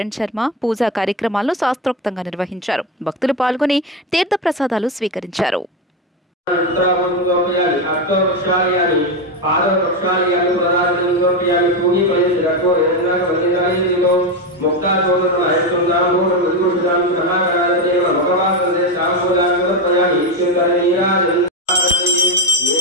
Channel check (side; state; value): both; normal; correlation 0.12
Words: శర్మ పూజా కార్యక్రమాలను శాస్త్రోక్తంగా నిర్వహించారు. భక్తులు పాల్గొని తీర్థ ప్రసాదాలు స్వీకరించారు.